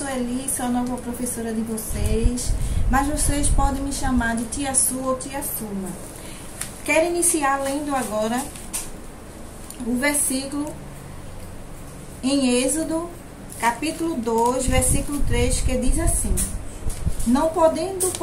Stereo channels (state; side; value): identical; both; correlation 1.00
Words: sou a nova professora de vocês, mas vocês podem me chamar de Tia Su ou Tia Suma. Quero iniciar lendo agora o versículo em Êxodo, capítulo 2, versículo 3, que diz assim: Não podendo,